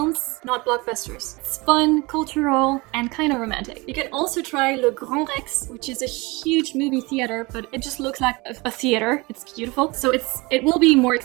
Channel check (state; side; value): quieter; left; 24.8 dB